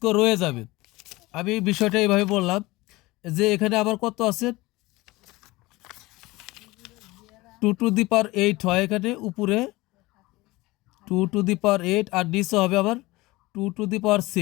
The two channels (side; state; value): right; quieter; 20.8 dB